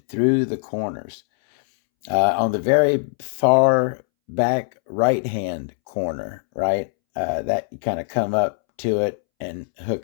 through the corners. On the very far back right-hand corner, right? That you kind of come up to it and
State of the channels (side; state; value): right; silent; 64 dB below the other